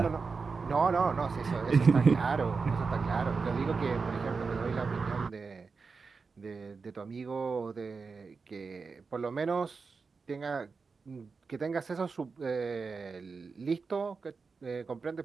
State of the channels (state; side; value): quieter; left; 4.8 dB